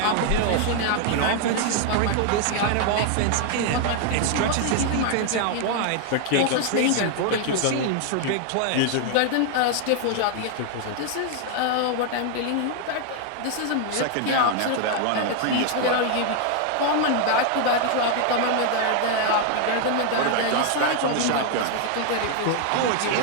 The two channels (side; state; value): both; different; correlation 0.00